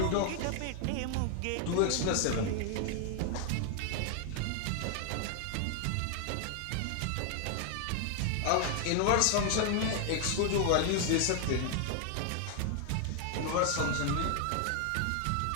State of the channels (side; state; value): both; different; correlation 0.00